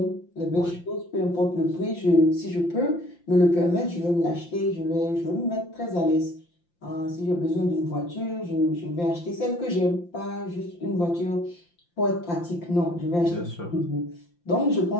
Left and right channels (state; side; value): late; right; 5.8 ms